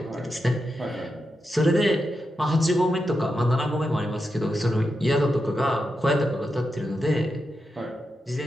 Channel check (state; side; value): normal; both; correlation 0.87